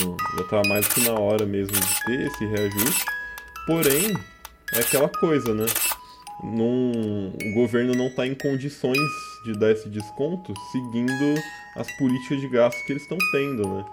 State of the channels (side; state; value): both; identical; correlation 1.00